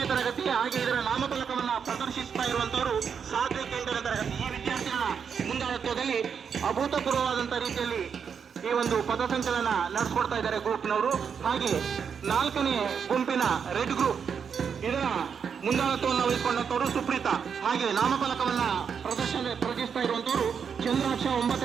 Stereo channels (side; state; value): left; quieter; 6.8 dB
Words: ತರಗತಿ. ಹಾಗೆ ಇದರ ನಾಮಫಲಕವನ್ನ ಪ್ರದರ್ಶಿಸ್ತಾ ಇರುವಂತವರು ಸಾತ್ವಿಕ್ 8ನೇ ತರಗತಿ. ಈ ವಿದ್ಯಾರ್ಥಿಗಳ ಮುಂದಾಳತ್ವದಲ್ಲಿ ಅಭೂತಪೂರ್ವವಾದಂತಹ ರೀತಿಯಲ್ಲಿ ಈ ಒಂದು ಪಥಸಂಚಲನ ನಡೆಸ್ಕೊಡ್ತಾ ಇದ್ದಾರೆ ಗ್ರೂಪ್ನವರು. ಹಾಗೆ 4ನೇ ಗುಂಪಿನ ರೆಡ್ ಗ್ರೂಪ್ ಇದರ ಮುಂದಾಳತ್ವವನ್ನು ವಹಿಸಿಕೊಂಡಂತವರು ಸುಪ್ರೀತಾ. ಹಾಗೆ ನಾಮಫಲಕವನ್ನ ಪ್ರದರ್ಶಿಸ್ತಾ ಇರುವಂತವರು ಚಂದ್ರಾಕ್ಷ